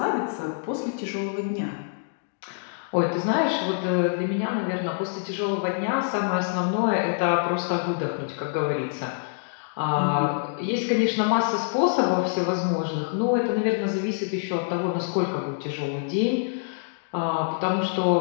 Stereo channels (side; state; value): right; silent; digital silence